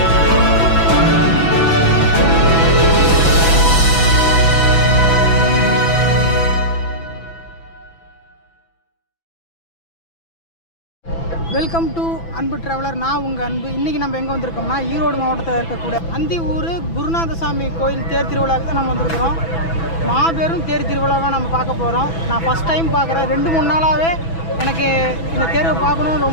வெல்கம் டு அன்பு டிராவலர். நான் உங்கள் அன்பு. இன்றைக்கி நம்ம எங்கே வந்திருக்கோம்னா ஈரோடு மாவட்டத்தில் இருக்கக்கூடிய அந்தியூர் குருநாதசாமி கோயில் தேர் திருவிழாவுக்கு தான் நம்ம வந்திருக்கிறோம். மாபெரும் தேர் திருவிழாவை நம்ம பார்க்க போகிறோம். நான் ஃபஸ்ட் டைம் பார்க்குறேன். 2-3 நாளாகவே எனக்கு இந்த தேர்வை பார்க்கணுன்னு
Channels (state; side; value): late; right; 6.0 ms